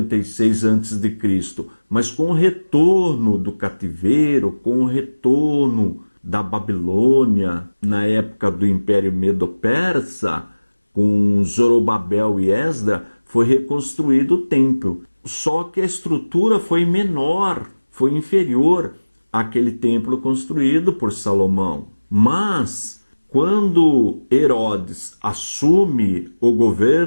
a.C. Mas com o retorno do cativeiro, com o retorno da Babilônia, na época do Império Medo-Persa, com Zorobabel e Esdra, foi reconstruído o templo. Só que a estrutura foi menor, foi inferior àquele templo construído por Salomão. Mas, quando Herodes assume o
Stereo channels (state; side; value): inverted; both; correlation -1.00